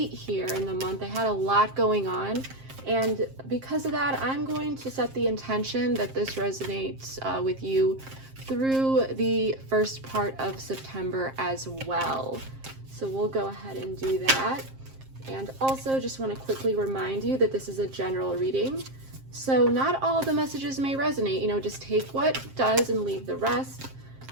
here in the month. I had a lot going on. And because of that, I'm going to set the intention that this resonates with you through the first part of September as well. So we'll go ahead and do that. And also just want to quickly remind you that this is a general reading. So not all the messages may resonate, just take what does and leave the rest.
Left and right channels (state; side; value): late; left; 7.5 ms